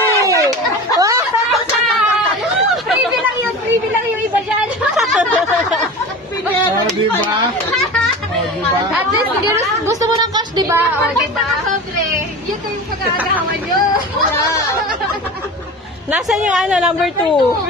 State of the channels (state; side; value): normal; both; correlation 0.32